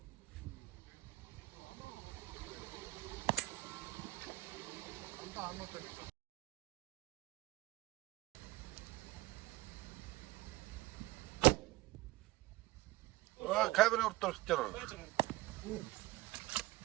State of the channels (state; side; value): quieter; left; 19.2 dB